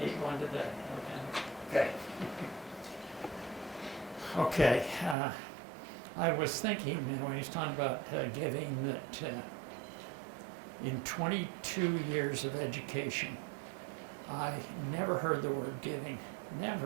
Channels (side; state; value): left; drops out; at 5.2 s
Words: need one today. Okay. Okay, I was thinking, when he's talking about giving, that in 22 years of education, I never heard the word giving,